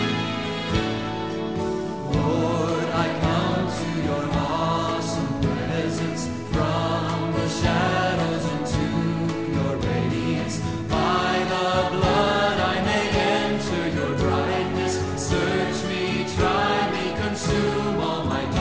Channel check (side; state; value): both; identical; correlation 1.00